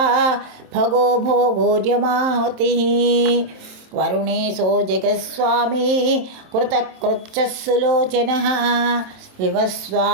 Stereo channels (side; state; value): left; late; 27 ms